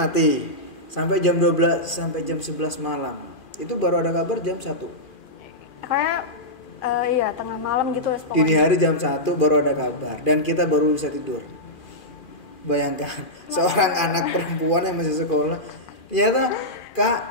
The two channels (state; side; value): late; right; 2.4 ms